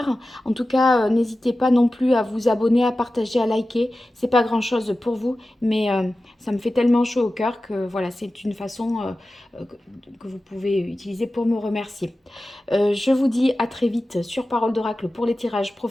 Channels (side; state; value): both; normal; correlation 0.95